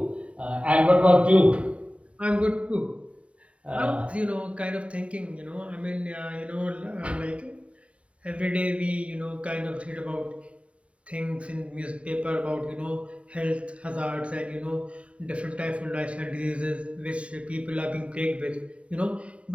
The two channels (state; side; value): late; left; 0.063 ms